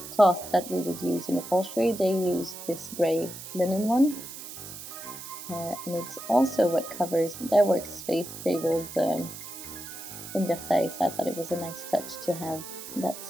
cloth that we would use in upholstery, they used this grey linen one. And it's also what covers their workspace tables in Versailles, so I thought it was a nice touch to have that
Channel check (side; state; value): right; noise; hiss, 11 dB below the sound